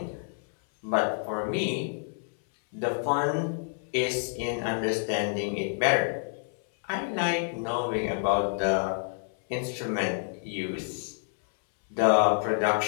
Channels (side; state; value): right; silent; 59 dB below the other